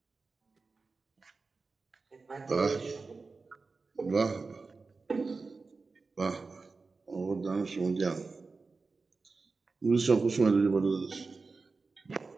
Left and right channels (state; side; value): quieter; left; 4.1 dB